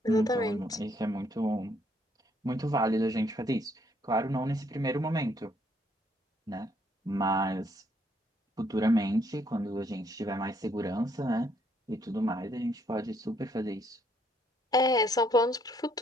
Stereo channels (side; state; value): both; normal; correlation 0.69